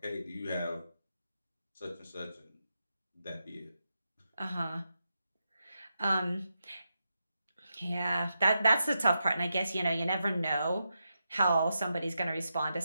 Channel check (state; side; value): inverted; both; correlation -0.87